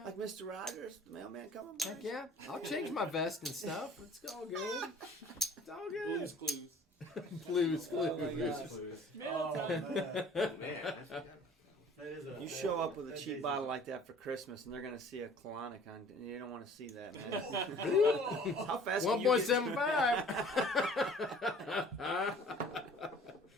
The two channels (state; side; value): normal; both; correlation 0.51